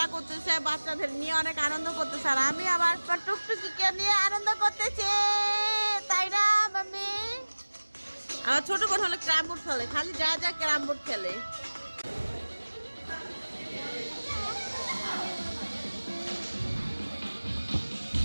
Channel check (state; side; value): inverted; both; correlation -1.00